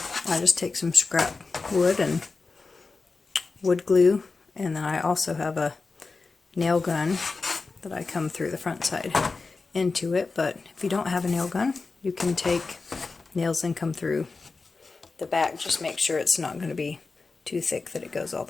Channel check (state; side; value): quieter; right; 4.1 dB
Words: I just take some scrap wood and wood glue, and then I also have a nail gun that I come through the front side into it. But if you don't have a nail gun, you can take nails and come through the back. Just make sure it's not going to be too thick that it goes all